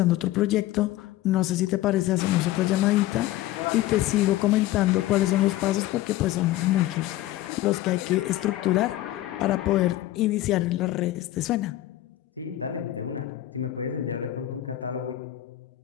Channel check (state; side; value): quieter; right; 15.0 dB